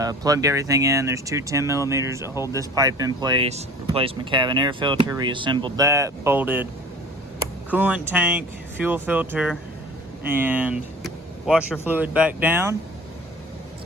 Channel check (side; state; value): both; normal; correlation 0.43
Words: Plugged everything in. There's 2 10mm that hold this pipe in place. Replaced my cabin air filter, reassembled that, bolted coolant tank, fuel filter, and washer fluid back down,